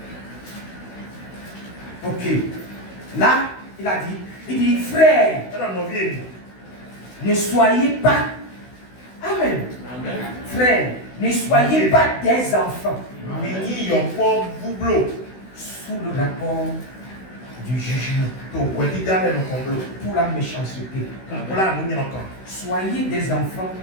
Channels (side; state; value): right; late; 16 ms